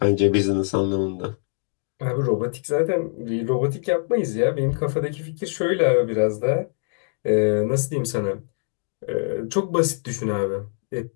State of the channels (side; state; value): right; silent; 63 dB below the other